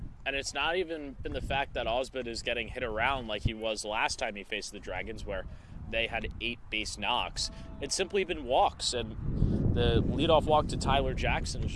And it's not even been the fact that Osmond is getting hit around like he was last time he faced the Dragons, where they had 8 base knocks. It's simply been walks, and the leadoff walk to Tyler Jackson has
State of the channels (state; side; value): identical; both; correlation 1.00